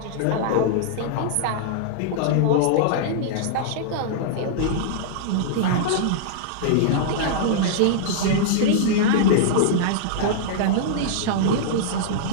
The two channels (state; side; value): different; both; correlation -0.02